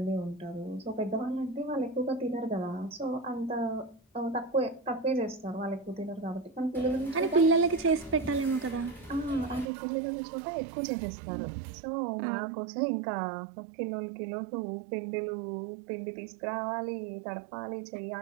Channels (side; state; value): left; drops out; at 9.7 s